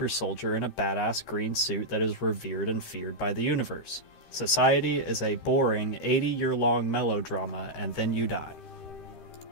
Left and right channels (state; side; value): late; right; 13 ms